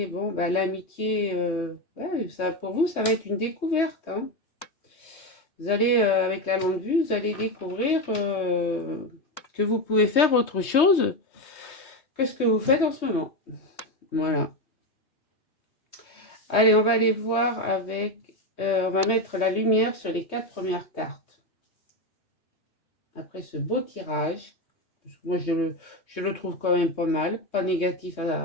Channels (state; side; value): late; right; 3.2 ms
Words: bon, bah, l'amitié, ouais, ça, pour vous, ça va être une découverte, hein. Vous allez, avec la longue vue, vous allez découvrir que vous pouvez faire autre chose que ce que vous faites en ce moment. Voilà. Allez, on va aller voir avec... on va mettre la lumière sur les 4 premières cartes. Après ce beau tirage, parce que moi je le trouve quand même pas mal, pas négatif